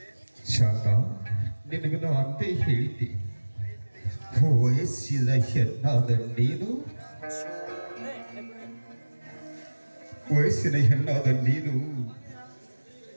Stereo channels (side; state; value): both; inverted; correlation -1.00